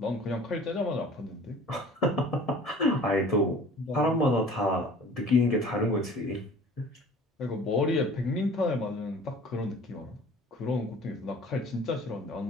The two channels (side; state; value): both; normal; correlation 0.47